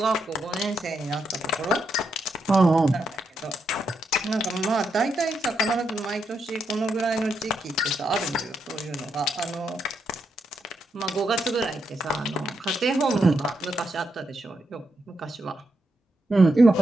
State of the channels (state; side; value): normal; both; correlation 0.82